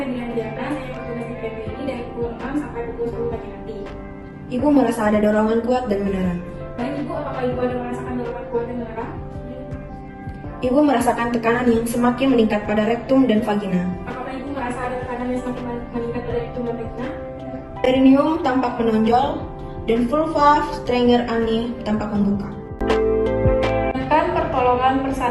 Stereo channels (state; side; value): identical; both; correlation 1.00